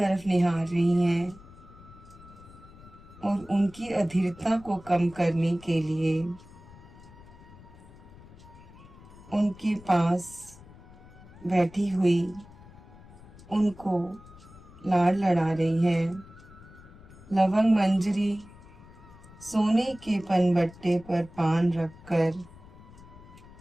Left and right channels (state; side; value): noise; left; rumble, 21 dB below the sound